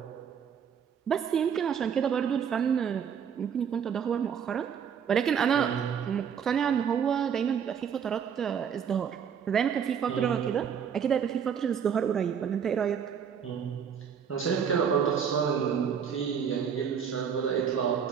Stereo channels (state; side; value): quieter; left; 7.6 dB